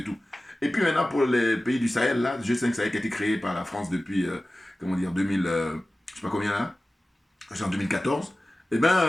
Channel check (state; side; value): normal; both; correlation 0.96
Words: tout. Et puis maintenant pour les pays du Sahel, là, G5 Sahel qui a été créé par la France depuis, 2000, je sais pas combien là, c'est en 2014. Eh